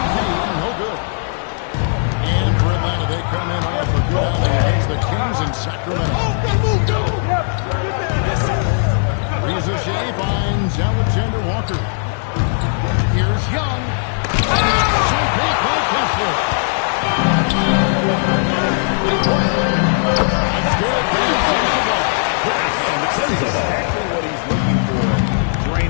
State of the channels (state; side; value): silent; right; 68 dB below the other